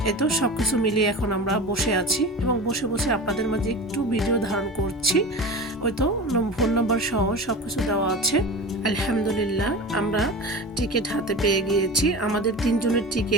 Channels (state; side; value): normal; both; correlation 0.32